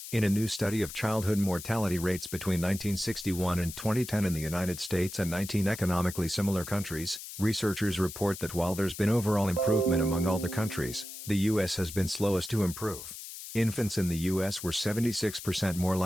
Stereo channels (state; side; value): noise; left; hiss, 11 dB below the sound